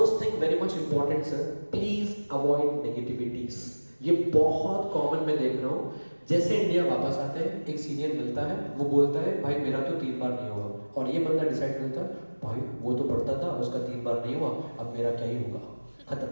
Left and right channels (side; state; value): both; inverted; correlation -1.00